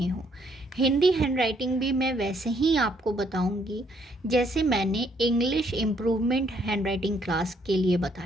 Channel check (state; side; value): normal; both; correlation 0.69